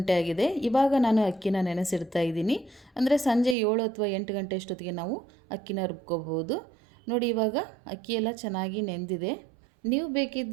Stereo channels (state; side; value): drops out; left; at 3.6 s